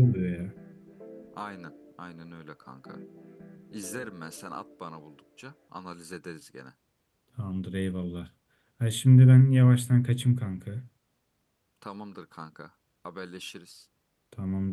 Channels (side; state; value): both; identical; correlation 1.00